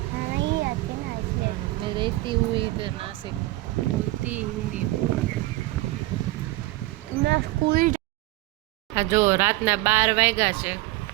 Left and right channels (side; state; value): left; quieter; 19.2 dB